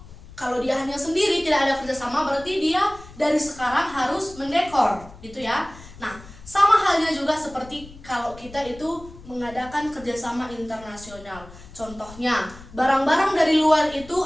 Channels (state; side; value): noise; left; rumble, 19 dB below the sound